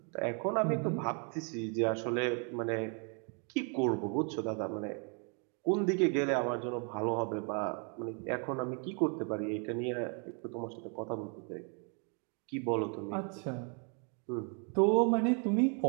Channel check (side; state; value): left; quieter; 39.0 dB